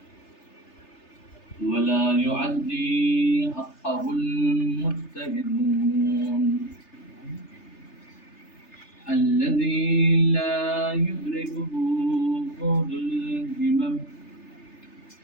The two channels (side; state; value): right; late; 3.3 ms